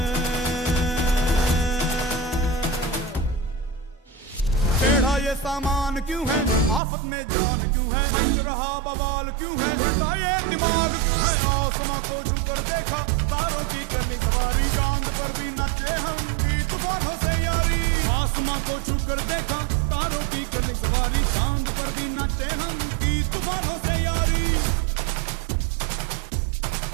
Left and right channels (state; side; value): drops out; left; at 6.8 s